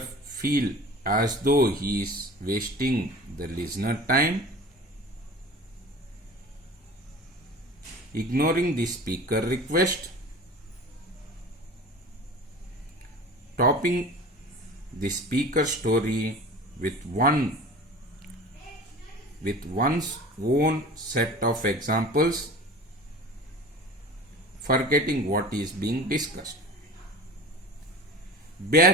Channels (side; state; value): both; normal; correlation 0.39